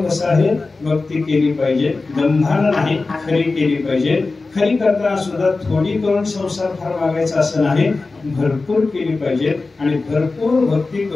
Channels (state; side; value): quieter; right; 3.7 dB